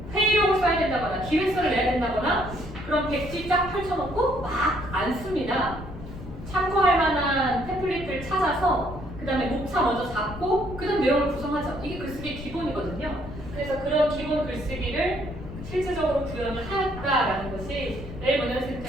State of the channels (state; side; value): noise; left; rumble, 12 dB below the sound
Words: 회의록을 써야 된다거나 기획서를 내야 된다거나 그럼 백지 쫙 펼쳐놓고 막 안 씁니다. 참고할 만한 템플릿을 찾아서 그 다음에 목차 먼저 잡고 그 다음 내용을 구성하죠. 이게 글쓰기의 기본이거든요. 그래서 그런 기본 글쓰기를 실질적으로 구현을 하였다라는 것이 내일